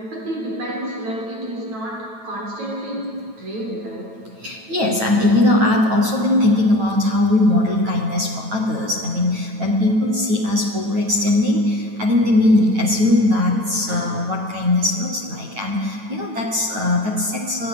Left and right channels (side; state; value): left; late; 9.1 ms